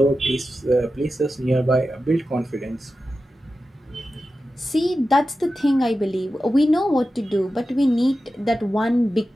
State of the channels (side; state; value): both; normal; correlation 0.92